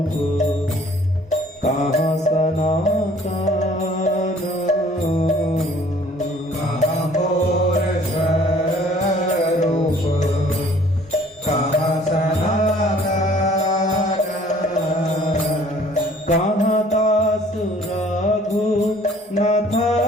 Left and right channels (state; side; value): normal; both; correlation 0.55